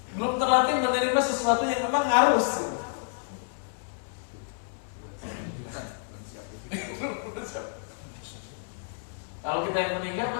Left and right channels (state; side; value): silent; right; 59 dB below the other